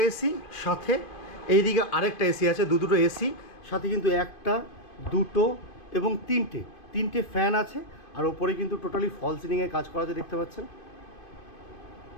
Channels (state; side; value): late; right; 2.5 ms